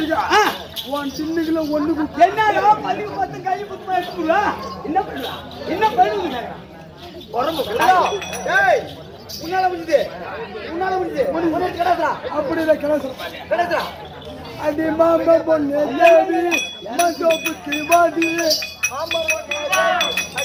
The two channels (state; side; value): identical; both; correlation 1.00